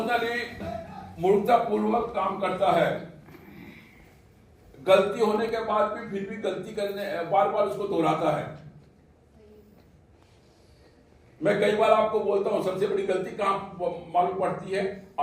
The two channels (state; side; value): identical; both; correlation 1.00